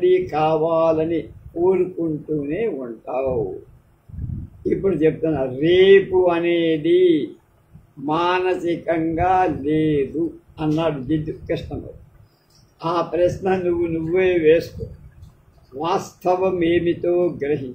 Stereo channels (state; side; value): identical; both; correlation 1.00